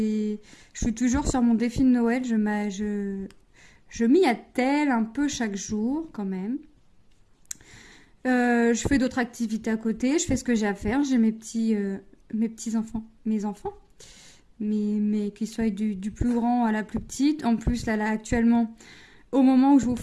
suis toujours sur mon défi de Noël. Je m'y attelle un peu chaque jour, quand même. Je fais d'autres activités à côté, je fais ce que j'ai à faire. J'ai mes petits enfants, mais qu'ils soient du plus grand à la plus petite. En plus, là actuellement, au moment où je vous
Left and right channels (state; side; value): identical; both; correlation 1.00